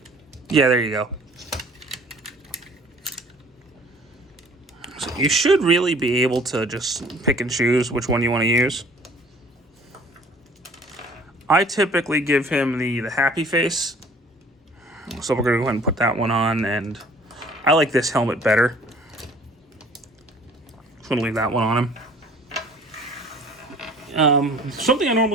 Yeah, there you go. So you should really be able to just pick and choose which one you want to use. I typically give him the happy face. So we're going to go ahead and put that one on, and I like this helmet better. I'm going to leave that one on him. Something I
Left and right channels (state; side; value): normal; both; correlation 0.52